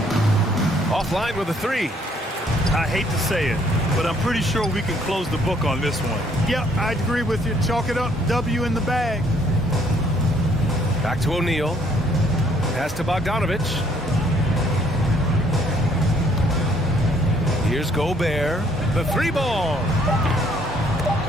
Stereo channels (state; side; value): normal; both; correlation 0.64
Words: Offline with a 3. I hate to say it, but I'm pretty sure we can close the book on this one. Yep, I'd agree with you. Chalk it up. W in the bag. Back to O'Neal. Pass to Bogdanovich. Here's Gobert. The 3-ball.